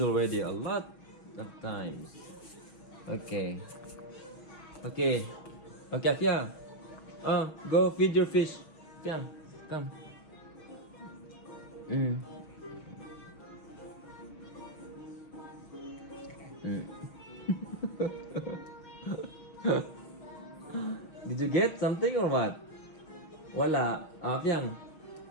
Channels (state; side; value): late; right; 6.2 ms